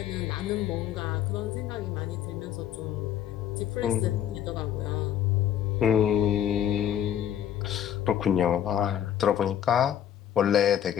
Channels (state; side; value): quieter; right; 10.2 dB